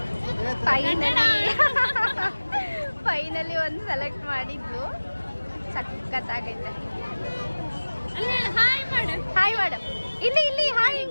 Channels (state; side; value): inverted; both; correlation -1.00